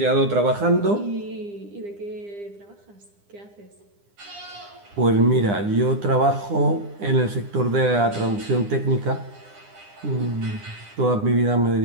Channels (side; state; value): left; late; 9.9 ms